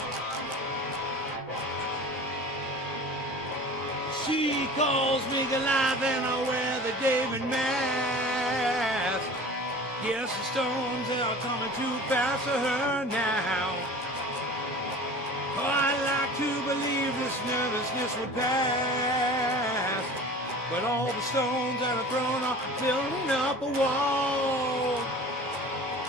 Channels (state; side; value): normal; both; correlation 0.40